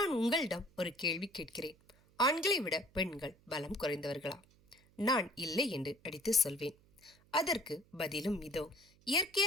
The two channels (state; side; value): noise; right; hum, 30 dB below the sound